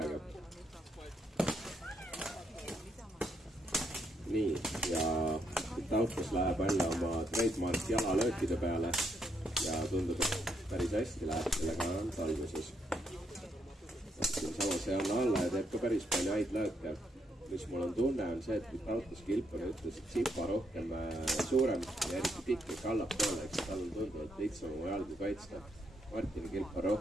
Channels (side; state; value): both; normal; correlation 0.76